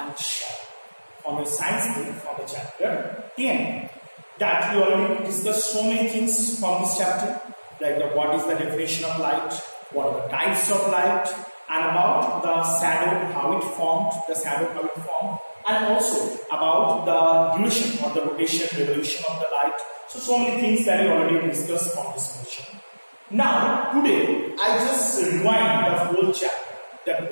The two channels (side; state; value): both; inverted; correlation -1.00